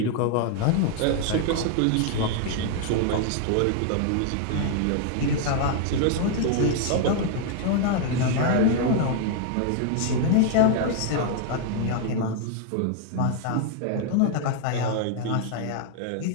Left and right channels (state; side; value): different; both; correlation 0.00